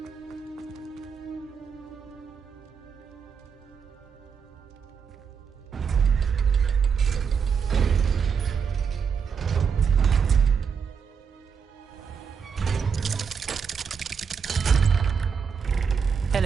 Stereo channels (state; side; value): quieter; left; 6.4 dB